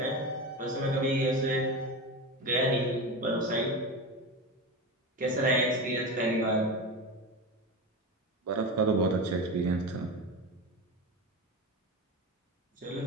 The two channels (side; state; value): both; normal; correlation 0.23